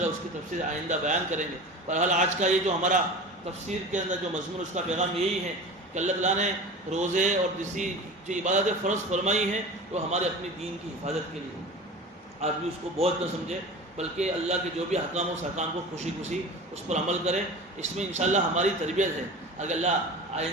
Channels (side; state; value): both; normal; correlation 0.34